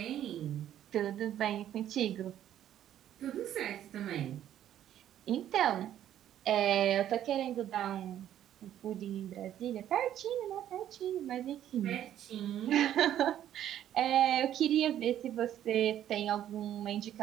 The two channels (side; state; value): left; quieter; 11.2 dB